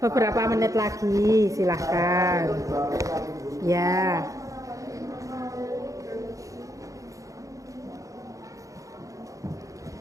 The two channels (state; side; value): late; left; 0.16 ms